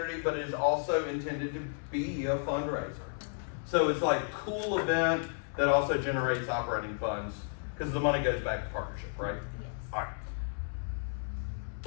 but it is also intended to be a fundraiser. So it's like a cool event that also generates operating funds because the money goes back to partnership, right? Yes. All right.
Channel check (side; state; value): right; silent; 56 dB below the other